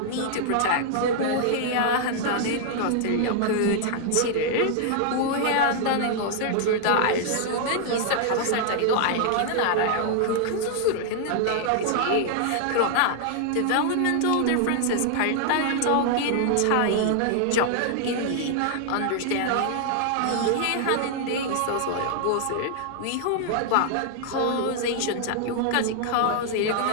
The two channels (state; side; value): different; both; correlation 0.00